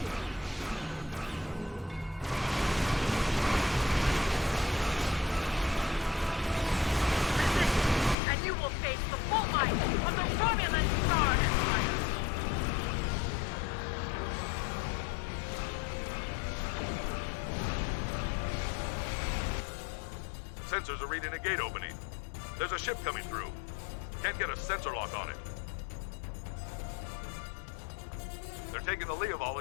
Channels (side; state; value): right; drops out; at 8.2 s